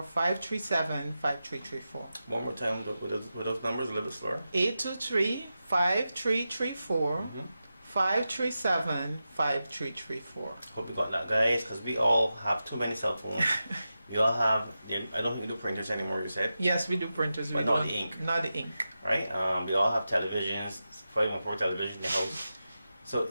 537-5334. One more time with those numbers, a little bit slower. 823-5334, 537-5334. Hope you got that, guys, because we all have too many cell phones. We all have, I don't think we do printers anymore, you said, Yes, we do printers. But we not don't- the ink. Not the ink. right? We all have televisions, 514 television in the house. So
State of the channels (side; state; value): both; inverted; correlation -0.91